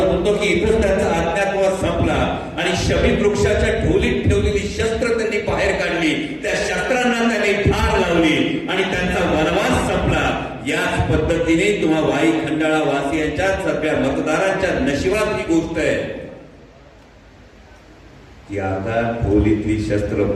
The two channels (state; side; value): identical; both; correlation 1.00